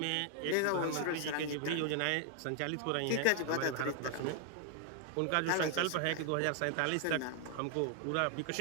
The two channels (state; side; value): different; both; correlation 0.00